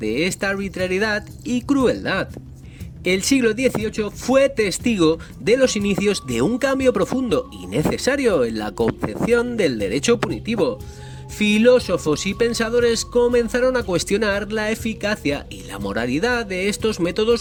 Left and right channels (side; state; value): both; identical; correlation 1.00